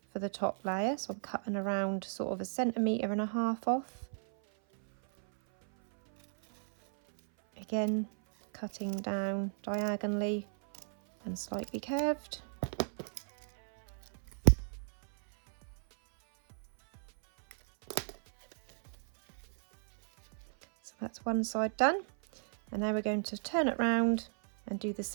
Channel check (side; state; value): left; silent; 55 dB below the other